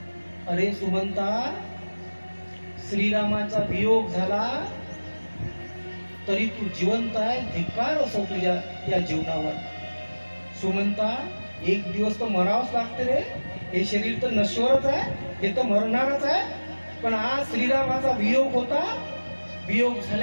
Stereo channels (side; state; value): both; inverted; correlation -1.00